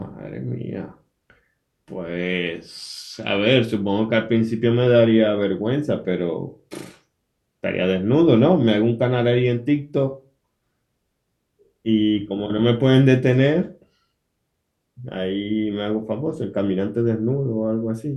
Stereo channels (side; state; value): both; identical; correlation 1.00